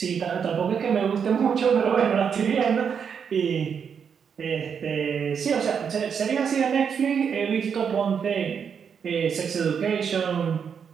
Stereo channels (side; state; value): left; quieter; 7.0 dB